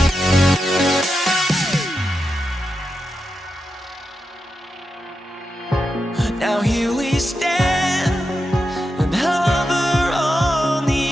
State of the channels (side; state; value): both; normal; correlation 0.88